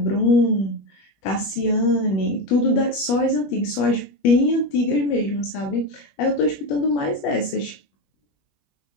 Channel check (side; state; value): right; late; 21 ms